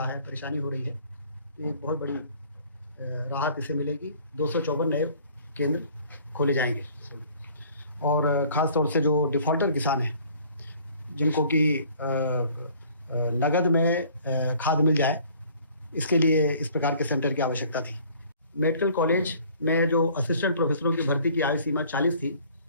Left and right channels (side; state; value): both; inverted; correlation -0.54